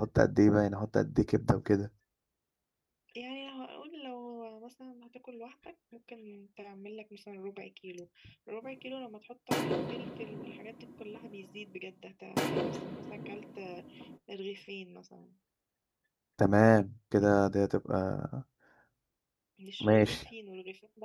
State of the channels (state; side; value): identical; both; correlation 1.00